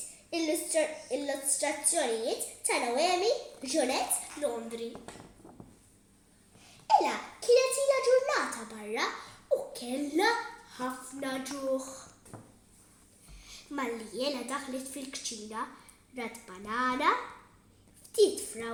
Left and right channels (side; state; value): both; identical; correlation 1.00